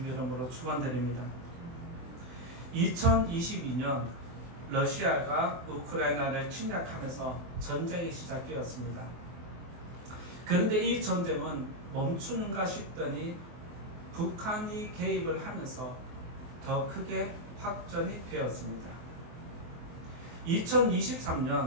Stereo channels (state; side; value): late; left; 23 ms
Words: 이름으로 축원드립니다. 2022년 러시아가 우크라이나를 침략하면서 전쟁이 시작되었습니다. 그런데 이 전쟁은 멈추는가 싶더니 북한이 개입을 하면서 더 크게 확전이 되었습니다.